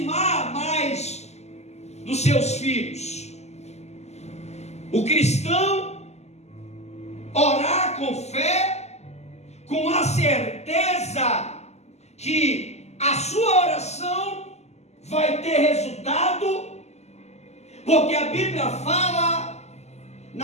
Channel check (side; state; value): right; late; 0.32 ms